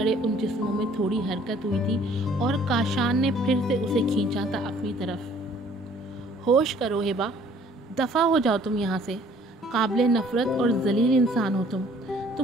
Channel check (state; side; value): normal; both; correlation 0.57